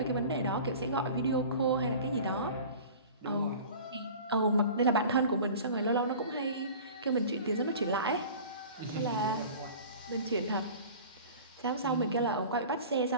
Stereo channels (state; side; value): inverted; both; correlation -0.41